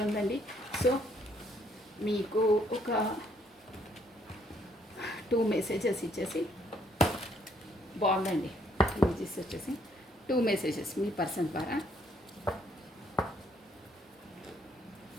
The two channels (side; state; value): both; normal; correlation 0.68